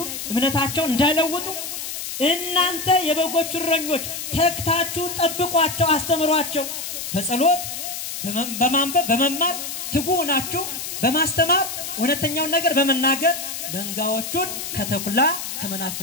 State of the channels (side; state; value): left; noise; hiss, 6 dB below the sound